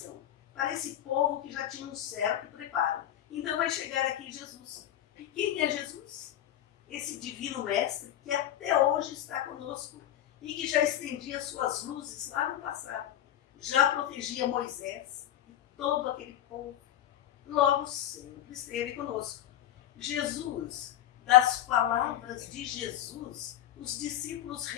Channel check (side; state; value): right; quieter; 11.8 dB